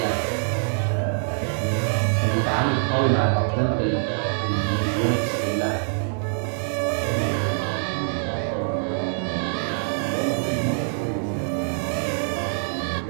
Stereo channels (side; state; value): left; silent; digital silence